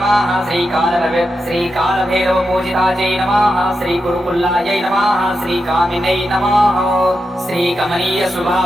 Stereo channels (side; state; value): both; normal; correlation 0.88